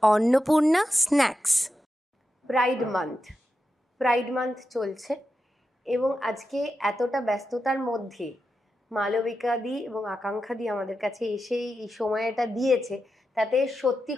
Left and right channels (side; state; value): both; normal; correlation 0.89